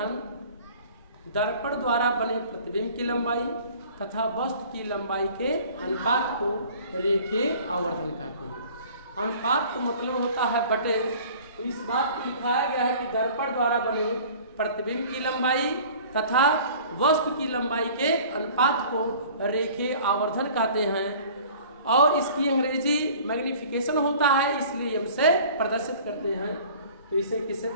दर्पण द्वारा बने प्रतिबिंब की लंबाई तथा वस्तु की लंबाई के अनुपात को रेखीय आवर्धन कहते हैं। अनुपात का मतलब होता है बटे। तो इस बात को दिखाया गया है कि दर्पण द्वारा बने प्रतिबिंब की लंबाई तथा वस्तु की लंबाई के अनुपात को रेखीय आवर्धन कहते हैं और इसकी अंग्रेजी मैग्निफिकेशन होता है, इसलिए हम से प्रदर्शित करते हैं। तो इसे किससे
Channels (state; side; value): inverted; both; correlation -0.47